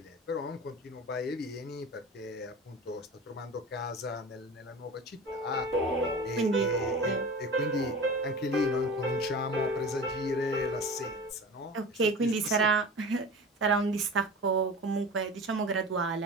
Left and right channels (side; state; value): both; normal; correlation 0.34